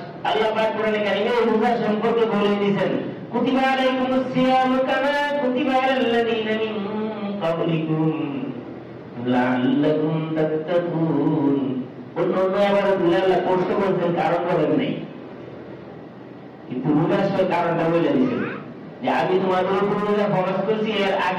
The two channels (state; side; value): identical; both; correlation 1.00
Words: আল্লাহ পাক কোরআনে কারিমে রোজা সম্পর্কে বলে দিয়েছেন কুতিবা আলাইকুমুস সিয়ামু কামা কুতিবা আলাল্লাযীনা মিন ক্বাবলিকুম লাআল্লাকুম তাত্তাকুন। অন্য আবার আল্লাহ কষ্ট করছেন, কারণ বলেন নাই, কিন্তু রোজার কারণটা বলে দিয়েছেন যে আমি তোমাদের উপর রোজা ফরজ করছি, এর